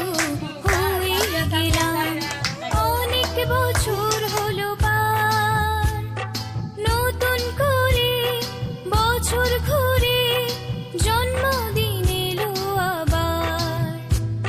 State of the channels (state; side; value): identical; both; correlation 1.00